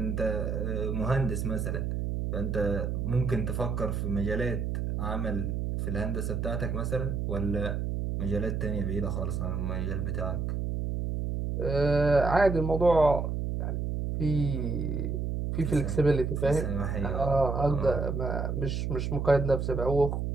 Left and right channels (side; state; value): right; noise; hum, 1 dB below the sound